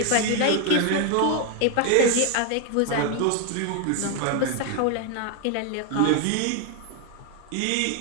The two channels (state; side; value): different; both; correlation 0.01